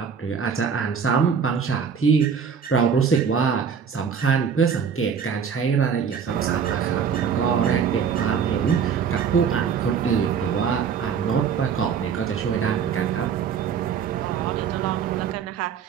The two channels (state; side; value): quieter; left; 6.9 dB